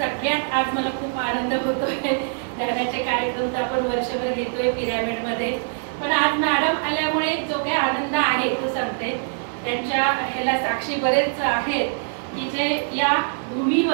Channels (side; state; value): left; silent; 63 dB below the other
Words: आज मला खूप आनंद होतोय. ध्यानाचे कार्यक्रम तर आपण वर्षभर घेतोय पिरॅमिड मध्ये, पण आज मॅडम आल्यामुळे जो काही आनंद आहे तो सांगते. त्यांच्या ह्याला साक्षी बरेच आहेत की जे या